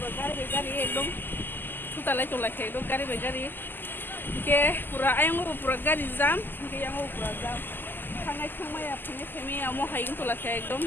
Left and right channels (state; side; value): late; right; 0.093 ms